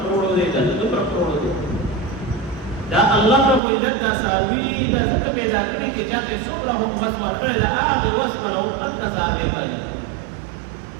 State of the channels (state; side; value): drops out; left; at 3.6 s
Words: کروڑو دی دا د دومره کروڑو دی دا الله رب العزت دا څاروي دا څنګه پیدا کړی چې چاته څومره هم وس ورکړی دا هغه وس ولو قد څاروي باندې